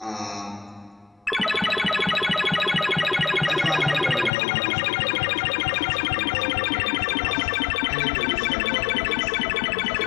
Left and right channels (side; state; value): right; drops out; at 4.3 s